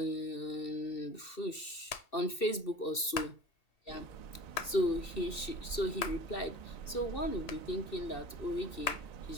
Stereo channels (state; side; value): late; right; 2.7 ms